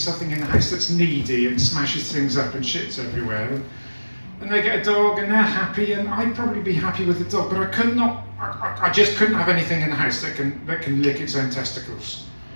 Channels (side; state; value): both; inverted; correlation -1.00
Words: in the house that's needy and smashes things up and shits everywhere. And they get a dog and they're happy, and I'd probably be happy with the dog, but I just couldn't have anything in the house that can lick its own testicles,